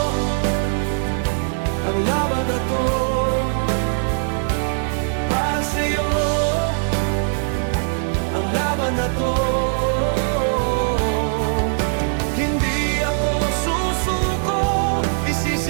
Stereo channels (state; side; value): silent; left; 55 dB below the other